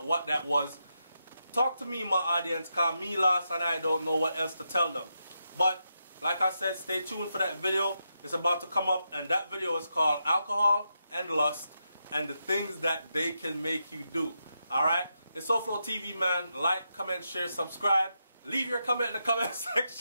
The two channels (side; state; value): both; inverted; correlation -0.85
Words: what that was. Talk to me, my audience, cause me lost and I don't know what else to tell them. But like I said, stay tuned for that video. It's about to come up, and that video is called Alcohol and Lust and the Things That They Can Make You Do. Alright? It's SouFLoTV, man. Like, comment, share, subscribe. Leave your comment in the comment